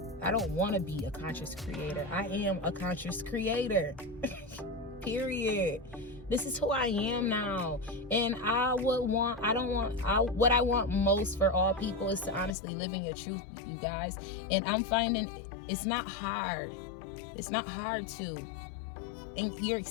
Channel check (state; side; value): drops out; right; at 12.6 s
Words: I don't want to be a conscious creator. I am a conscious creator. Period. This is who I am now. And what I want most for all people is to honestly live in your truth, you guys. And I'm finding it's not hard. It's not hard to. And you're